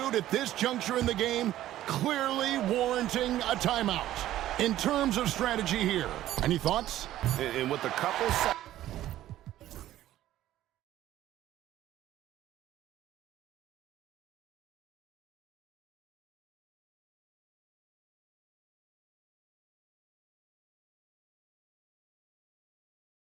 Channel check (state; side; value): quieter; left; 13.6 dB